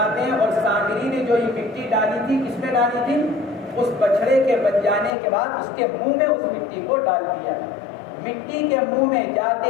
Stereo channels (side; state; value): right; drops out; at 5.2 s